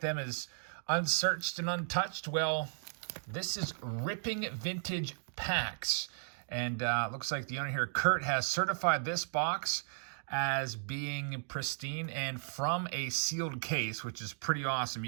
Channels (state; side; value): silent; left; digital silence